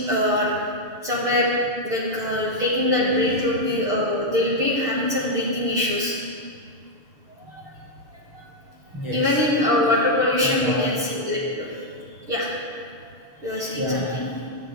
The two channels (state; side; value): late; left; 6.6 ms